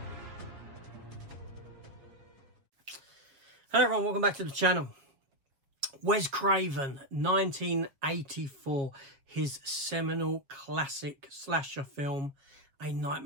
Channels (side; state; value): left; late; 7.3 ms